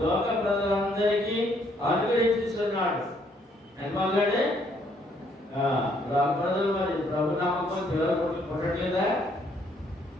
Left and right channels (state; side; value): normal; both; correlation 0.68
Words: లోక ప్రజలందరికీ అనుగ్రహించుతున్నాడు. ఎందుకంటే లోక ప్రజలు మరి ప్రభు నామకం పిల్లలు పుట్టట్లేదా?